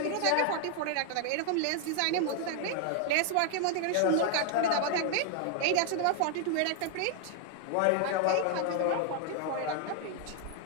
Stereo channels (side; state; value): both; different; correlation 0.00